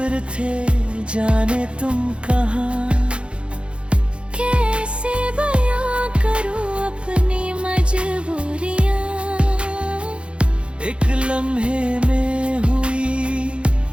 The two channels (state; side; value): late; left; 0.058 ms